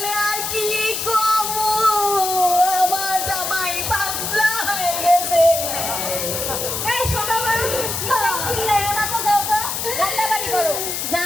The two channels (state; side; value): noise; left; hiss, 3 dB below the sound